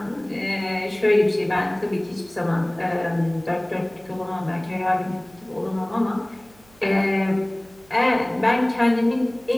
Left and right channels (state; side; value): noise; right; hum, 28 dB below the sound